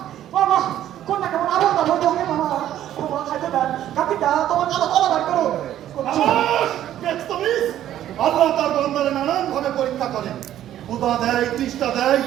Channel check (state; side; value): quieter; left; 11.9 dB